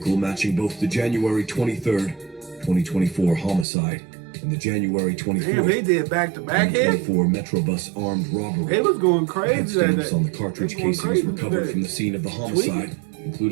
matching both the January 23rd, 2024 homicide and the January 24th, Damn, they did back-to-back hits. 2024 Metrobus armed robbery. It was going crazy that Stamps day. on the cartridge They going casings crazy recovered today. from the scene of the homicide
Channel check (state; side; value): drops out; left; at 3.7 s